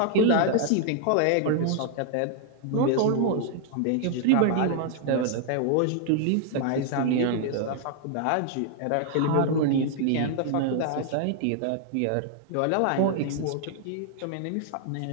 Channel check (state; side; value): different; both; correlation 0.00